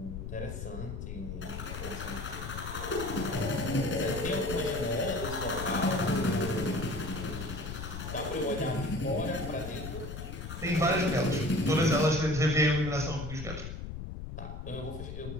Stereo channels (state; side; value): noise; left; rumble, 7 dB below the sound